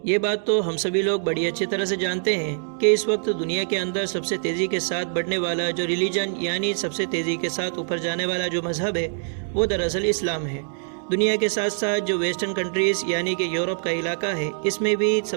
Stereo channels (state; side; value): silent; left; digital silence